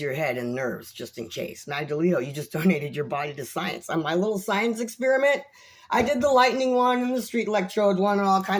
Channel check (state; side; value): identical; both; correlation 1.00